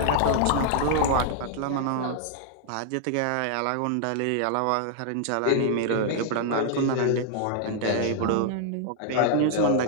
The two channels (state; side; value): different; both; correlation -0.01